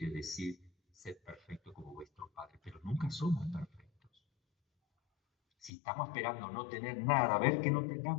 decir ser perfecto como vuestro Padre, pero nunca somos perfectos. Si estamos esperando no tener nada, ver que no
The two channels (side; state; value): right; drops out; at 5.7 s